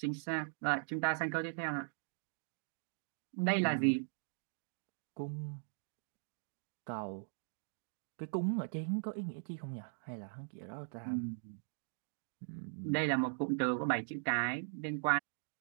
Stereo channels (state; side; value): silent; left; digital silence